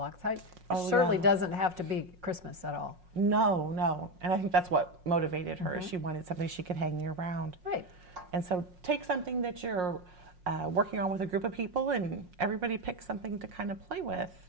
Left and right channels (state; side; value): late; left; 5.5 ms